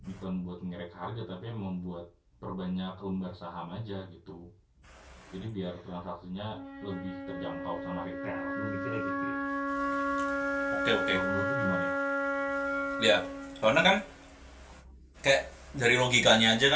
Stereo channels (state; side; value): identical; both; correlation 1.00